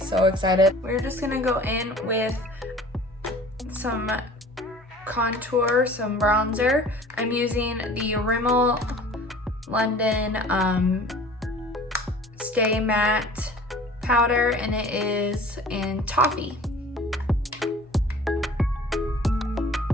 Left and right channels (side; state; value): both; normal; correlation 0.46